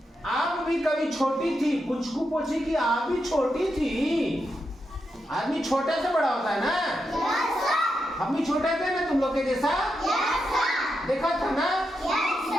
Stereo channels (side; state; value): both; normal; correlation 0.85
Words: आप भी कभी छोटी थी? पुचकू पूछी कि आप भी छोटी थी? आदमी छोटे से बड़ा होता है ना। Yes, sir. हम भी छोटे थे ना तुम लोग के जैसा। Yes, sir. देखा था ना? Yes,